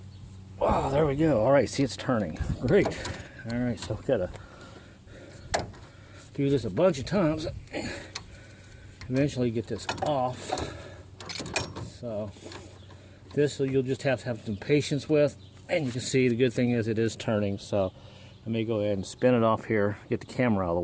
Oh, there we go. All right, see, it's turning. Great. All right, so we've got to do this a bunch of times. Eventually get this off. So this you'll just have to have some patience with, and you can see the good thing is it is turning. So let me go ahead and spin it off here, get the camera out of the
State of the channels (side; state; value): both; identical; correlation 1.00